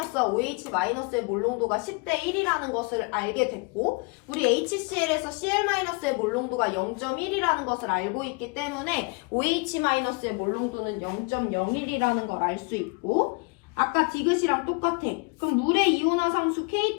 OH-의 몰농도가 10대 1이라는 것을 알게 됐고 우리 HCl에서 Cl-의 몰농도가 0.1이라는 것을 알고 있기 때문에 OH-의 몰농도는 0.01이라는 걸 알 수 있고 아까 디귿이랑 똑같아. 그럼 물의 이온화상수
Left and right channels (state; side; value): quieter; right; 30.0 dB